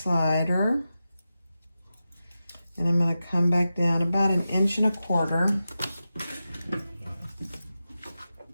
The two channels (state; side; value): inverted; both; correlation -0.92